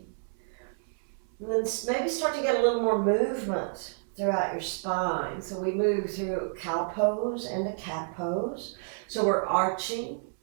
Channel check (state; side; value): silent; left; 58 dB below the other